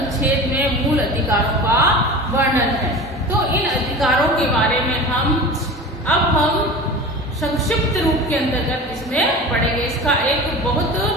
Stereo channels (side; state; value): both; normal; correlation 0.34